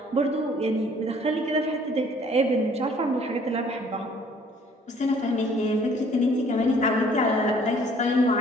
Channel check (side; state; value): both; normal; correlation 0.57